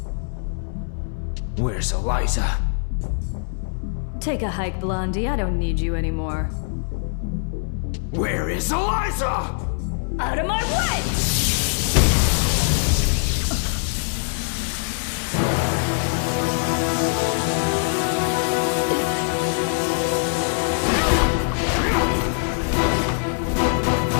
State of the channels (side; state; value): right; silent; 59 dB below the other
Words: Where's Eliza? Take a hike, Blondie. I don't need you anymore. Where is Eliza? Out of my way!